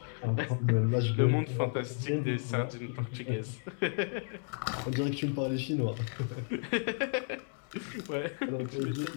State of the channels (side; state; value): right; silent; 56 dB below the other